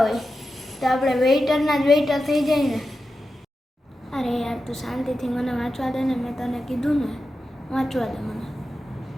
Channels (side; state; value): both; normal; correlation 0.91